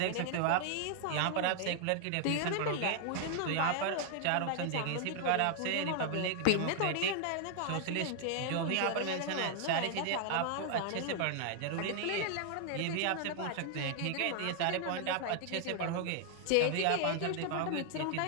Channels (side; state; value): both; different; correlation 0.00